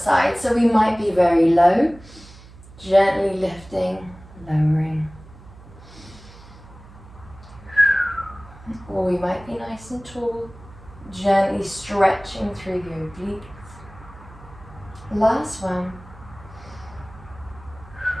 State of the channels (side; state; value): right; noise; hum, 20 dB below the sound